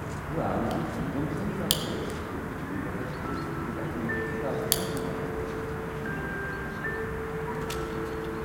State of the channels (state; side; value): identical; both; correlation 1.00